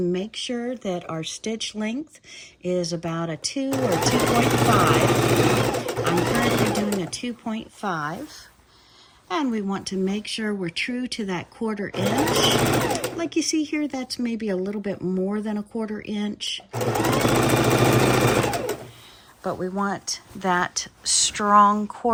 make sure that our stitch length is about a 2 or 2.5. I'm currently doing a 2.5. And we want to make sure we're true to that 1/4 inch. Like you see here, that's maybe a little bit more than a 1/4 inch. But we want that strong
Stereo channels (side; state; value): both; identical; correlation 1.00